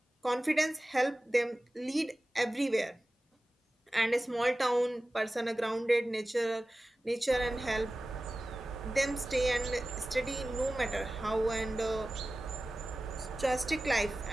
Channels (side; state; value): both; normal; correlation 0.96